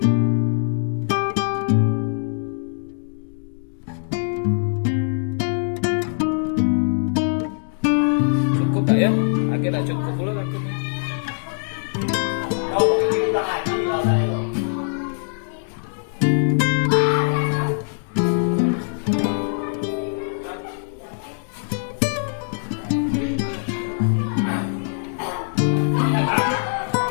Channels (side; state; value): right; silent; digital silence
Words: tak ya? Akhirnya cukup pula nanti.